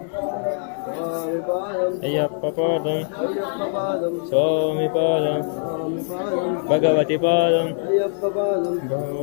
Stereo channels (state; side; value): silent; right; 64 dB below the other